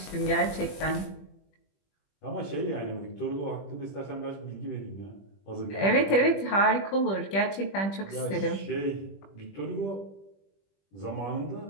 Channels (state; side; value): late; right; 20 ms